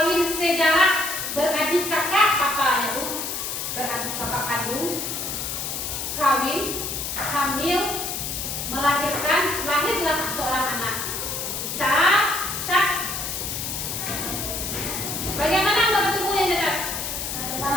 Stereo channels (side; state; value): left; noise; hiss, 4 dB below the sound